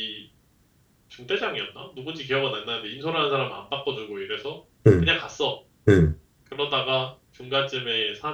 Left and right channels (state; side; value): identical; both; correlation 1.00